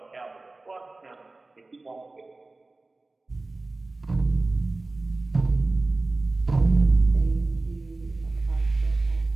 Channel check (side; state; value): left; quieter; 3.2 dB